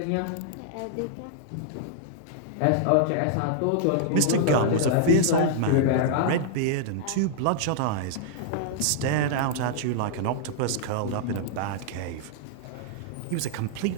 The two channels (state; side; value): different; both; correlation -0.01